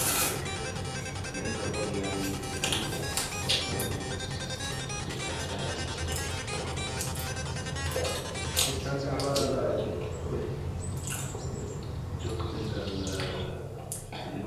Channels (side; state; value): both; identical; correlation 1.00